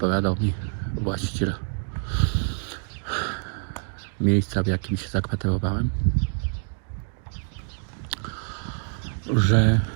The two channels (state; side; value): silent; left; 57 dB below the other